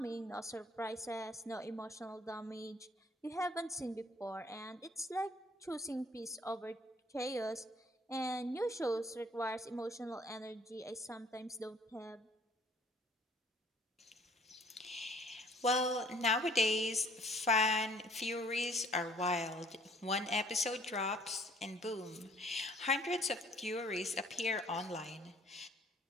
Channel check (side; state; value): both; normal; correlation 0.57